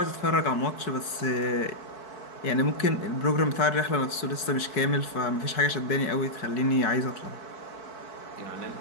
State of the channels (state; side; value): late; right; 4.6 ms